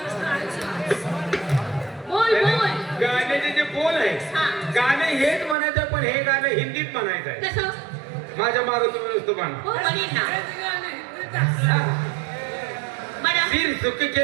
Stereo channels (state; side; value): drops out; left; at 5.6 s